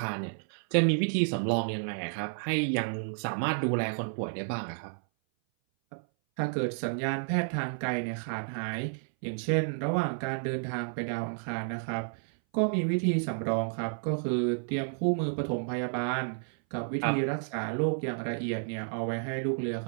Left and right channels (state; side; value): silent; left; 57 dB below the other